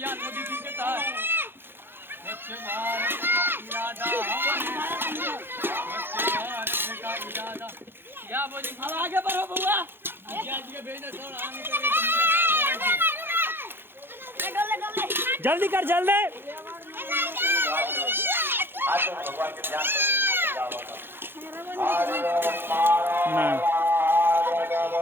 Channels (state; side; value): late; left; 0.10 ms